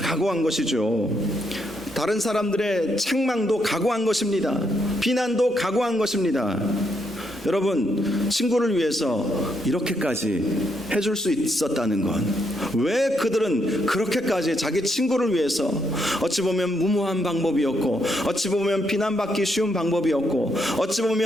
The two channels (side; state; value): both; normal; correlation 0.77